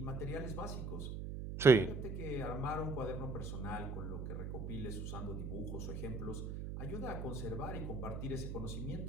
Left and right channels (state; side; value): noise; right; hum, 5 dB below the sound